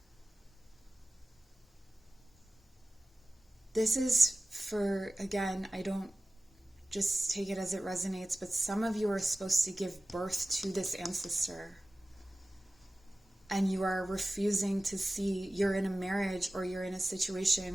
This is for, again, I don't just take it as it resonates, but some of you are supposed to give birth to this ancestor. And you are refusing to see, you're in a marriage or you're in a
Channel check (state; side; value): normal; both; correlation 0.96